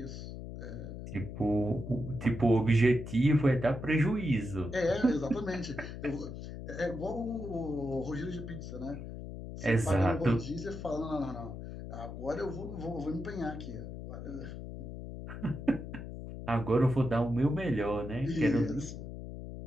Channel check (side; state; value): left; noise; hum, 9 dB below the sound